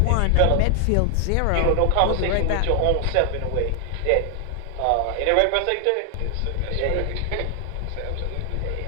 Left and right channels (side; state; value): both; different; correlation 0.00